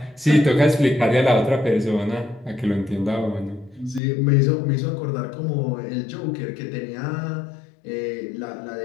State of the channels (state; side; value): drops out; right; at 4.0 s